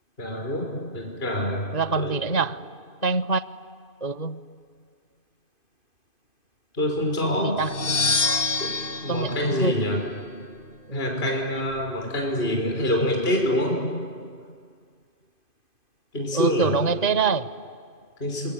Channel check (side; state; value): right; late; 2.5 ms